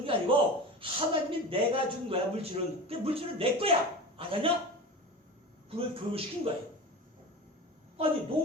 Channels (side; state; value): both; normal; correlation 0.31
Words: 게 아니고 하나님이 내가 준 거야, 물질은. 근데 물질은 내 거야. 아냐? 그걸 교육시킨 거예요. 아니,